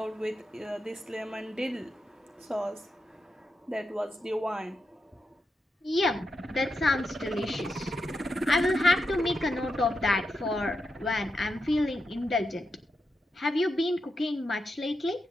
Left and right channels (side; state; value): both; normal; correlation 0.86